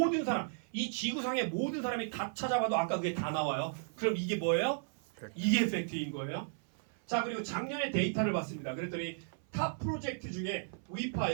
사람 이 지구상의 모든 사람이 다 찾아봐도 아까 그게 다 나와요. 그럼 이게 뭐예요? 이게 팩트인 거예요. 자, 그리고 작년에 데이터를 봤습니다. 그랬더니 탑 프로젝트 중에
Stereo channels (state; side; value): silent; left; 55 dB below the other